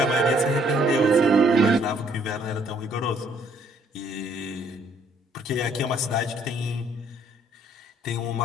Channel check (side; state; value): both; normal; correlation 0.64